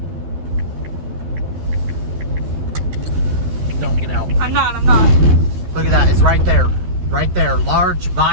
Don't get out. I'm not. Look at that. It's right there. Right there. Large,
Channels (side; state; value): left; late; 12 ms